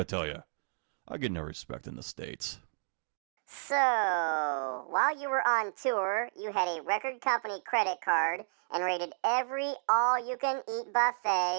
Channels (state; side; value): silent; left; digital silence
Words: tell you. I get no respect in the States. So, while you were on tour, you had a record company credit card and rated every all-you-can-eat